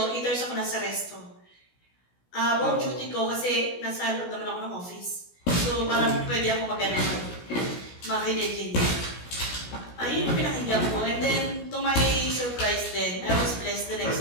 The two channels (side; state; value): right; late; 17 ms